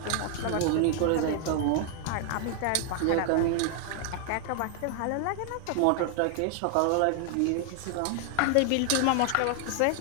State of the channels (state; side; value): different; both; correlation 0.00